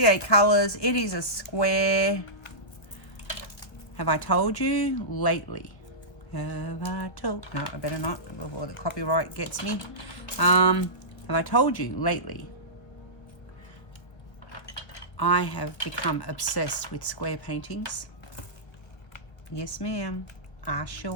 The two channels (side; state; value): right; late; 1.4 ms